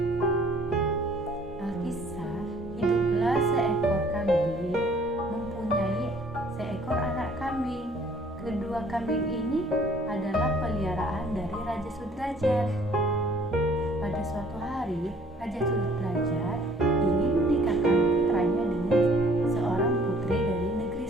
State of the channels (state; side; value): normal; both; correlation 0.57